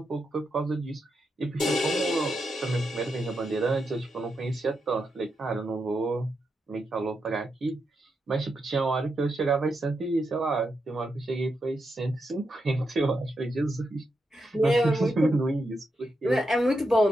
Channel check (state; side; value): normal; both; correlation 0.85